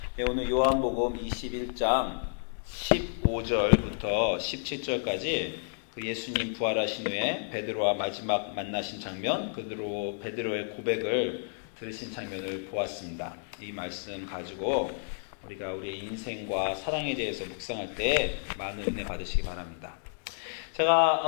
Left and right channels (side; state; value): right; silent; digital silence